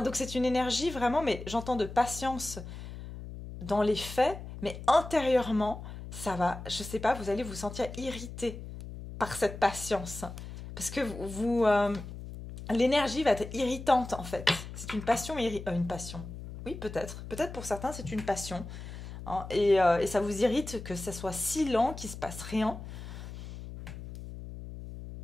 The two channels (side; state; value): left; noise; hum, 11 dB below the sound